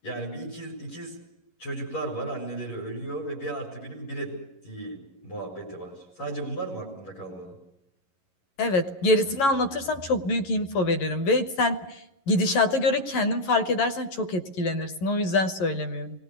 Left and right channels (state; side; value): late; right; 11 ms